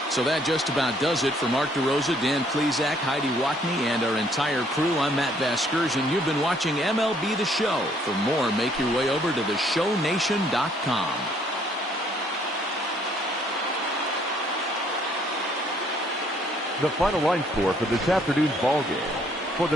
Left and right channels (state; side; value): normal; both; correlation 0.64